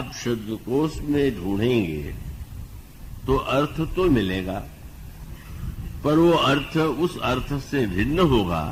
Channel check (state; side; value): identical; both; correlation 1.00